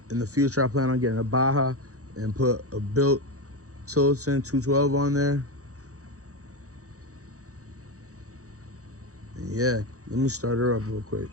In the future, I plan on getting a Baja and put a built Tilton 212 on there. And yeah, let me start her up real quick.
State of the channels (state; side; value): late; left; 0.65 ms